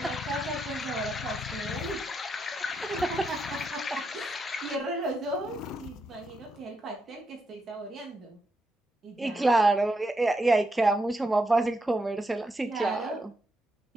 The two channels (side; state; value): both; normal; correlation 0.82